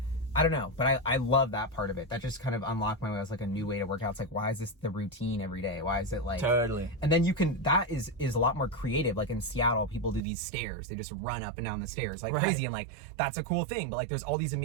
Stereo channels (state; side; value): drops out; left; at 10.2 s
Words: I don't know, but I love that part of it. That just kind of unlocked my way. It was like a new way to work out. It's like, why is this the routine every day? Why is it like... Totally. And then that is a lot more creative. Like in Seattle, people do these stairs. They just run up and down the stairs like crazy. And like, that's a cool thing. But like, there's all these